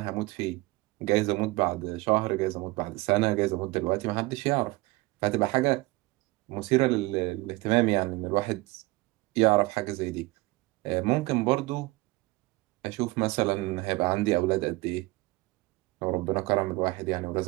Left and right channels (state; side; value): quieter; left; 21.8 dB